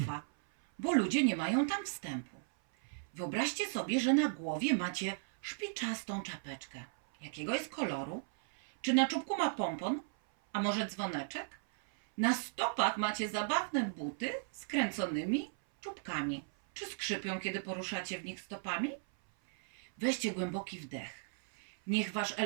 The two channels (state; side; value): silent; left; 54 dB below the other